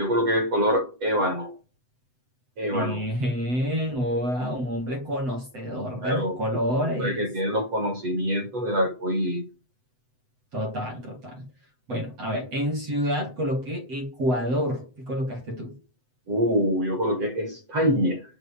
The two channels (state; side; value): late; left; 7.9 ms